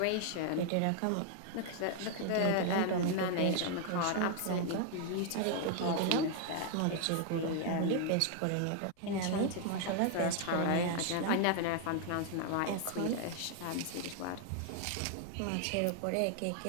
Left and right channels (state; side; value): different; both; correlation 0.00